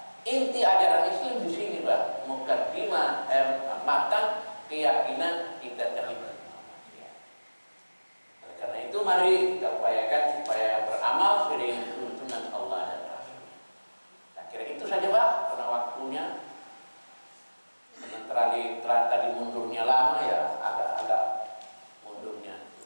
Inti ajaran Islam di sini, Pak, mukaddimah matan keyakinan kita terlibat. Karena itu mari kita upayakan supaya beramal sesuai dengan tuntunan Allah dan Rasul. Saya kira itu saja, Pak, karena waktunya. Karena tadi mundurnya lama ya, agak mundurnya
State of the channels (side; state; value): both; inverted; correlation -1.00